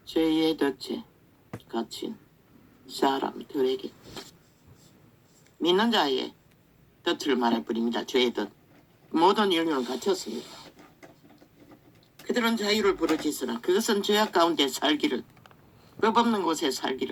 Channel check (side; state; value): both; identical; correlation 1.00